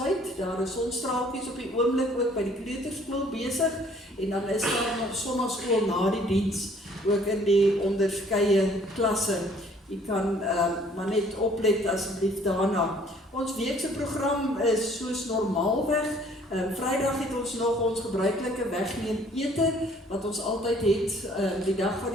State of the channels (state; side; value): normal; both; correlation 0.58